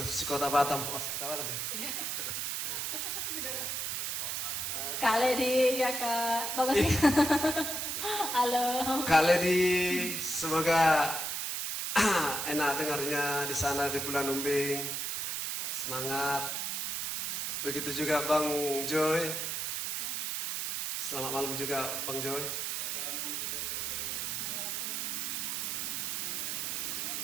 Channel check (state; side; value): noise; right; hiss, 1 dB below the sound